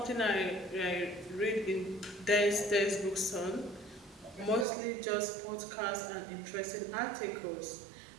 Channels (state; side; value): drops out; left; at 4.7 s